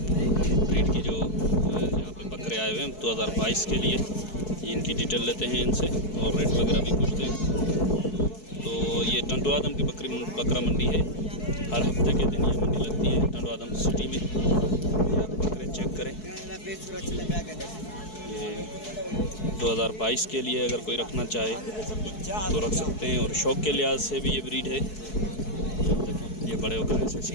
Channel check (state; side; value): late; right; 4.7 ms